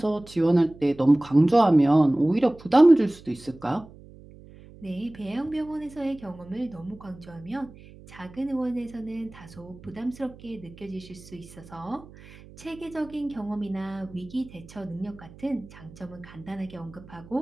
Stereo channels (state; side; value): noise; right; hum, 20 dB below the sound